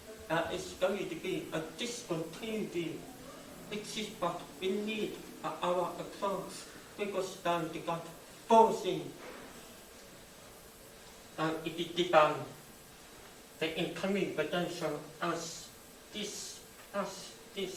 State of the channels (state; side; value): identical; both; correlation 1.00